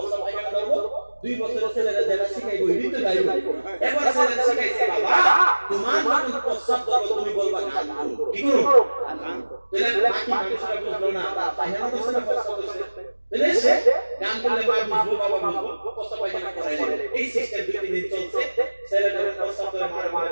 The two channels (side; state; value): both; inverted; correlation -1.00